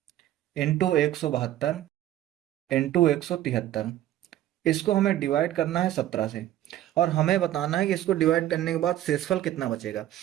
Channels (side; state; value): left; quieter; 13.1 dB